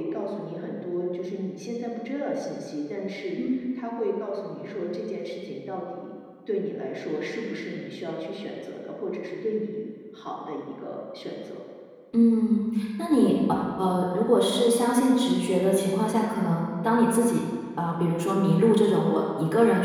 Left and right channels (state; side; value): identical; both; correlation 1.00